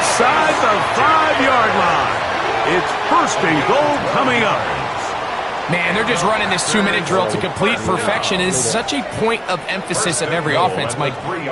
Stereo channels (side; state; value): both; identical; correlation 1.00